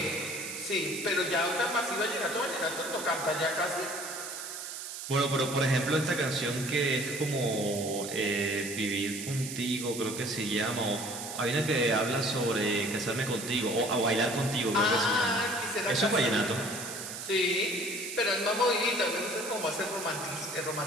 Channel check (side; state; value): right; noise; hiss, 8 dB below the sound